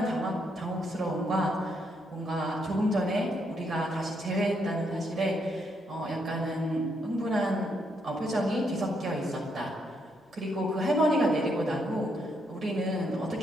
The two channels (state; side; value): normal; both; correlation 0.76